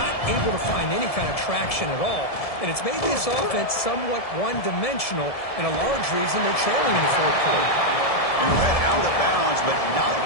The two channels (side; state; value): right; late; 1.7 ms